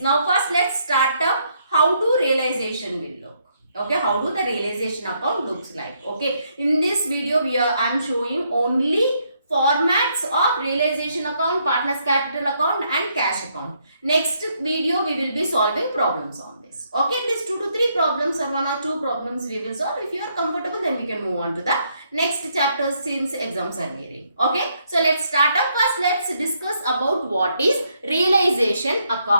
first let's start up how do realization will look. Okay, how do the realization account looks like. Okay, in this video I am showing only formats of realization account, partners capital account and cash account. Next video we will be solving problems on this. Okay, at least 2 to 3 problems or 1 or 2 problems we will solve. If you are comfortable, then we can move on to the next chapter since exams are nearing. Okay, so let's start up. First let's discuss about what is realization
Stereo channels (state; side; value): inverted; both; correlation -0.74